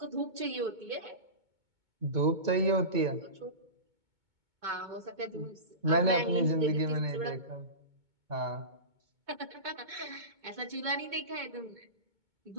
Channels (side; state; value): left; late; 2.2 ms